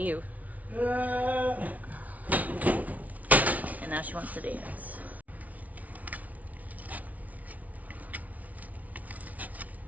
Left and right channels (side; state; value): left; late; 0.071 ms